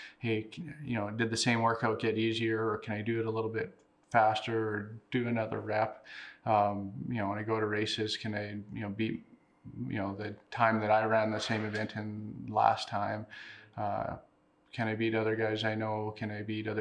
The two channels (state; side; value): identical; both; correlation 1.00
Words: Hey, did the same workout get easier, or can I do it a little bit faster or do another rep? When I go to races, can I, beat, the time that I ran the same event in last time? Can I beat other guys I know? Can I beat